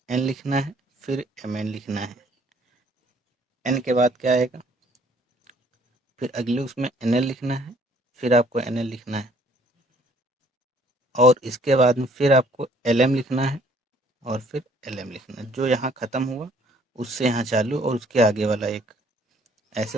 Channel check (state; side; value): normal; both; correlation 0.61